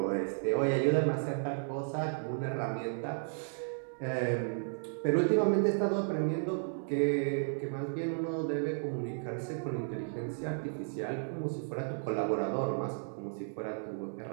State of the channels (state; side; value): silent; left; digital silence